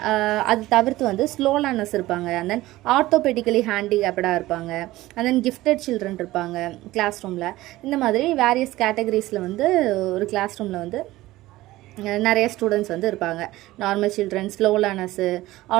அது தவிர்த்து வந்து ஸ்லோ லேர்னர்ஸ் இருப்பாங்க. அண்ட் தென் ஆர்த்தோபெடிக்கலி ஹேண்டிகேப்டாக இருப்பாங்க. அண்ட் தென் கிஃப்டட் சில்ட்ரன் இருப்பாங்க கிளாஸ் ரூமில். இந்த மாதிரி வேரியஸ் கேட்டகரிஸில் வந்து ஒரு கிளாஸ் ரூமில் வந்து நிறைய ஸ்டூடெண்ட்ஸ் வந்து இருப்பாங்க. Normal children, slow learners,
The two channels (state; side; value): quieter; left; 17.3 dB